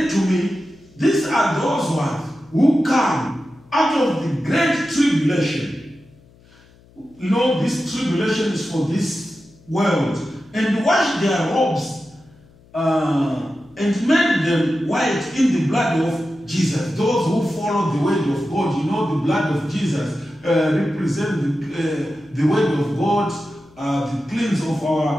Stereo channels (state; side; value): noise; left; hum, 28 dB below the sound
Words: to me, these are those ones who come out of the great tribulation. You know, this tribulation is for this world. And washed their robes and made them white in the blood of Jesus. Those who follow the word of God, you know, the blood of Jesus represent the word of God, the cleanse of